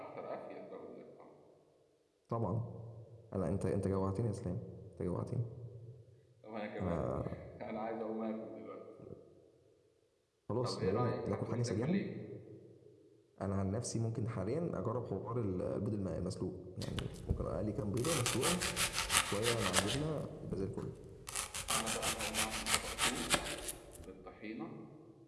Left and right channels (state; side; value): identical; both; correlation 1.00